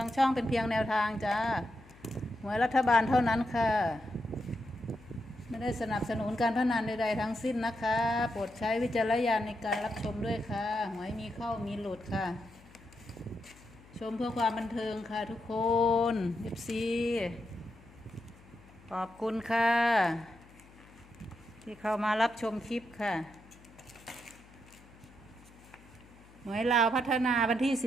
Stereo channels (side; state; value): left; noise; hum, 23 dB below the sound